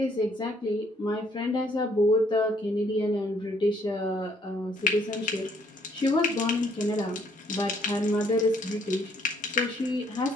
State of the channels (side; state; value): both; normal; correlation 0.66